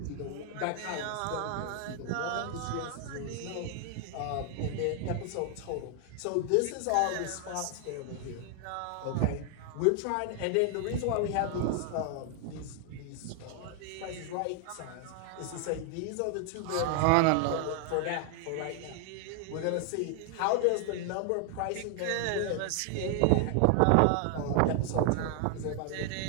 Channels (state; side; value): different; both; correlation 0.00